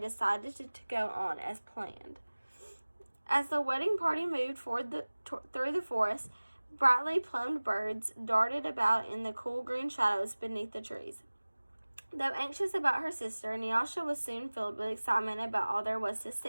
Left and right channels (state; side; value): inverted; both; correlation -1.00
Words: to go on as planned. As the wedding party moved through the forest, brightly plumed birds darted about in the cool green shadows beneath the trees. Though anxious about her sister, Nyasha was soon filled with excitement about all there was to